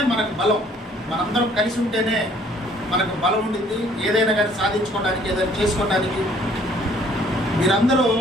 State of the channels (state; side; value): normal; both; correlation 0.59